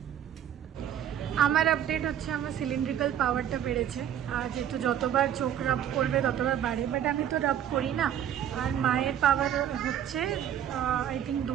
আমার আপডেট হচ্ছে আমার সিলিন্ড্রিক্যাল পাওয়ারটা বেড়েছে, আর যেহেতু যতবার চোখ রাব করবে ততবার বাড়ে, বাট আমি তো রাব করি না। আর মায়ের পাওয়ার হচ্ছে আই থিঙ্ক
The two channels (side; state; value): left; quieter; 10.1 dB